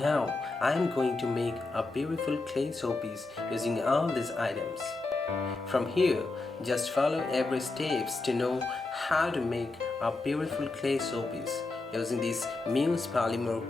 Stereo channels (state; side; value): quieter; right; 3.4 dB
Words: I am going to make a beautiful clay showpiece using all these items. From here, just follow every steps to know how to make a beautiful clay showpiece using this Muse